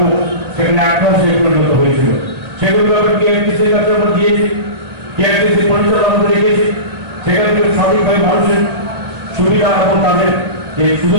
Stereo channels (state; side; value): late; left; 1.9 ms